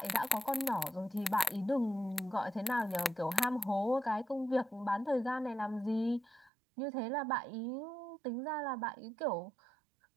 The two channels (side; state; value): left; drops out; at 6.5 s